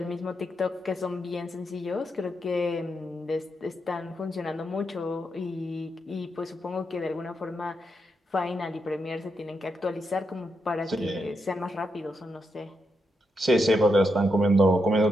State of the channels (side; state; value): both; normal; correlation 0.83